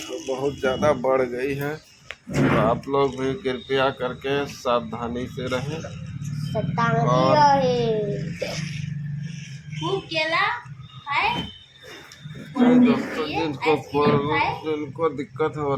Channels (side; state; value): both; identical; correlation 1.00